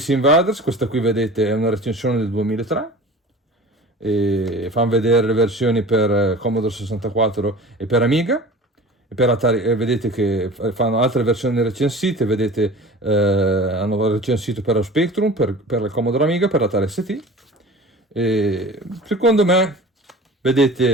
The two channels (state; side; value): normal; both; correlation 0.39